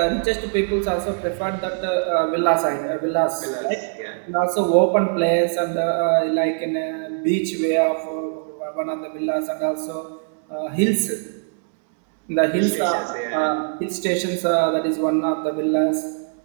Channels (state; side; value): silent; left; 64 dB below the other